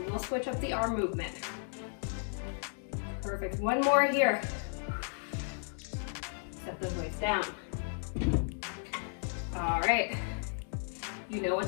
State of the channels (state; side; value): silent; right; 55 dB below the other